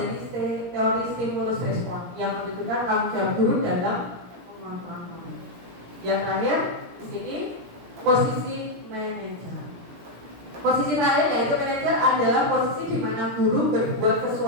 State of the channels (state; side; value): late; left; 17 ms